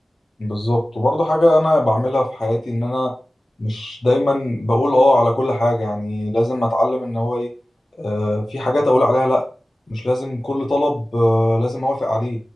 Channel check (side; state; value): both; normal; correlation 0.96